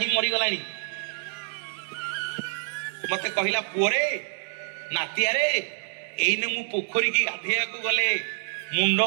मरी गलानी। मते कहिला पुअरे नातिया रे एइने मु पोखरी की गाधेया को गले मुंड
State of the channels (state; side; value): silent; left; 60 dB below the other